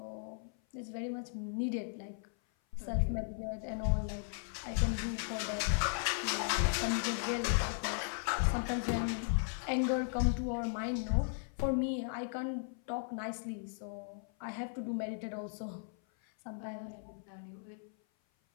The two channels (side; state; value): right; silent; 53 dB below the other